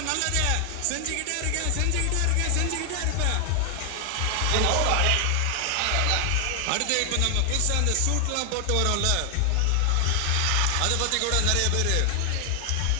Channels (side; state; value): both; different; correlation 0.00